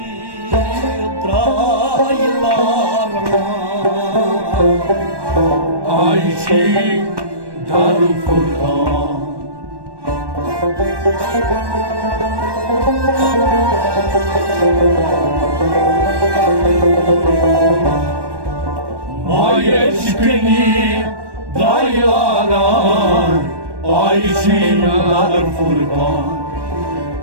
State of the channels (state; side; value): late; left; 1.1 ms